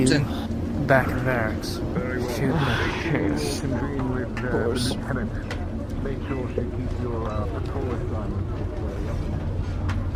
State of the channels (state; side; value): identical; both; correlation 1.00